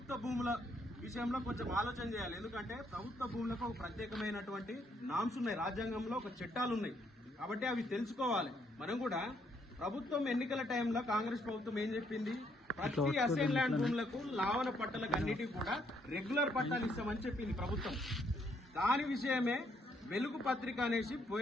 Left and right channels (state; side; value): normal; both; correlation 0.71